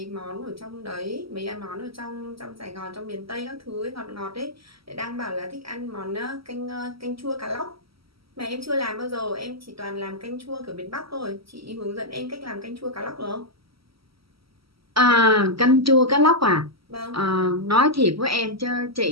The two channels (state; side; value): late; left; 0.75 ms